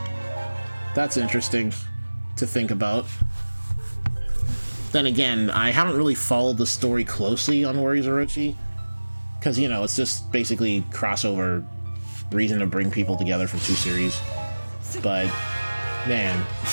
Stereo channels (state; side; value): inverted; both; correlation -1.00